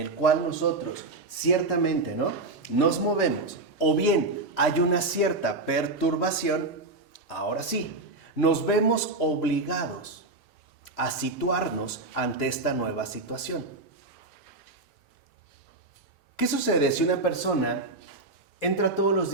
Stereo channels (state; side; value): quieter; left; 3.2 dB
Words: cual nosotros ciertamente, ¿no? Nos movemos, o bien hay una cierta perturbación, ahora sí, nos vemos obligados a situarnos ante esta nueva situación. ¿Qué sucede si una persona entra todos los